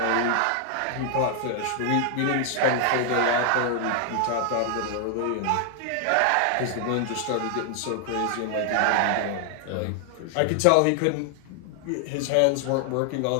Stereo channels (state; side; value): different; both; correlation 0.00